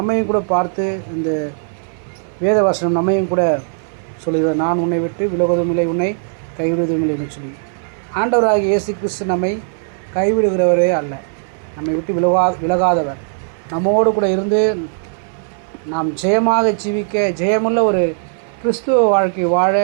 கூட பார்த்து இந்த வேத வசனம் நம்மையும் கூட சொல்கிறது, நான் உன்னை விட்டு விலகுவதும் இல்லை, உன்னை கைவிடுவதும் இல்லை என்று சொல்லி. ஆண்டவராகிய இயேசு கிறிஸ்து நம்மை கைவிடுகிறவரே அல்ல, நம்மை விட்டு விலகாதவர். நம்மோடு கூட இருந்து நாம் ஜெயமாக ஜீவிக்க, ஜெயமுள்ள ஒரு கிறிஸ்துவ வாழ்க்கை வாழ,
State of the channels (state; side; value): silent; left; 63 dB below the other